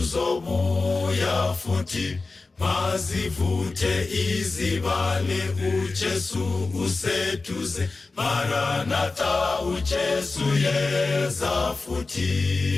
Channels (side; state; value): right; quieter; 3.7 dB